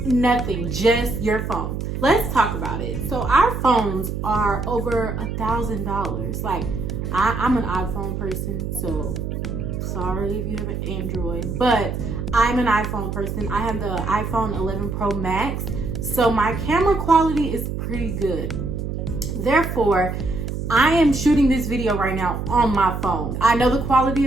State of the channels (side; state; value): right; noise; hum, 4 dB below the sound